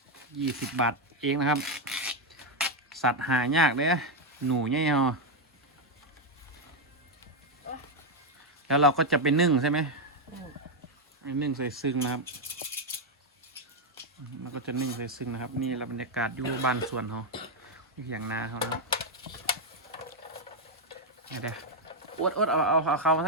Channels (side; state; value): both; normal; correlation 0.03